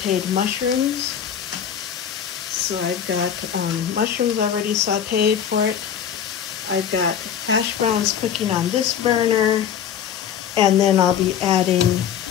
mushrooms. So I've got mushrooms already sauteed for it. I've got hash browns cooking on this burner, and then I'll be adding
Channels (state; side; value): quieter; right; 8.7 dB